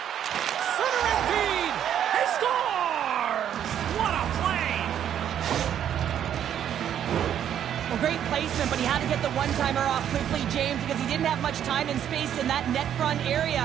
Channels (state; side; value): quieter; left; 9.8 dB